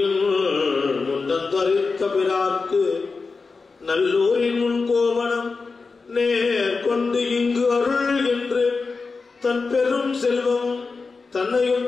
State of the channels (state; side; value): quieter; right; 4.4 dB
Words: முண்டத்தரித்த பிறார்க்கு நல்லூரின் முன் கோவணம் நேர் கொண்டு இங்கு அருள் என்று தன் பெரும் செல்வம் தன்னையும்